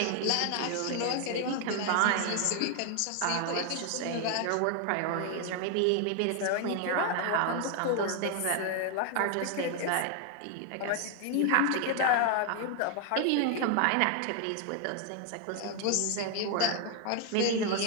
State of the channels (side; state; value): both; different; correlation 0.00